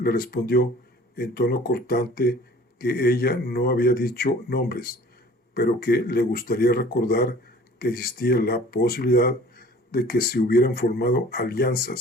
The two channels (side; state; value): both; normal; correlation 0.49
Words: respondió en tono cortante que ella no había dicho nombres, pero que le gustaría recordar que existía la posibilidad de que se hubieran formado